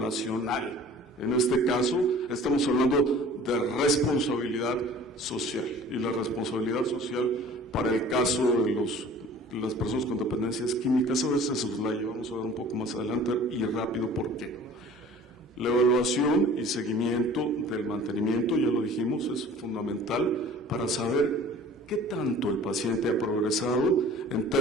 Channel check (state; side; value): normal; both; correlation 0.47